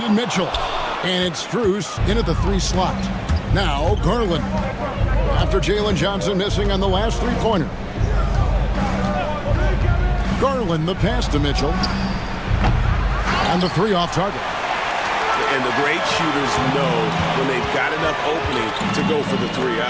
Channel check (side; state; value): both; identical; correlation 1.00